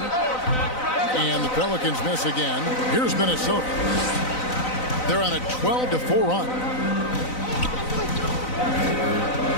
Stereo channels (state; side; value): late; right; 4.0 ms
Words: the Pelicans miss again. Here's Minnesota. They're on a 12-4 run.